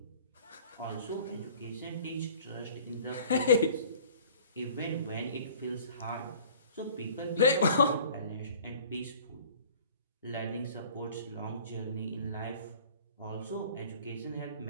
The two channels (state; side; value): inverted; both; correlation -0.48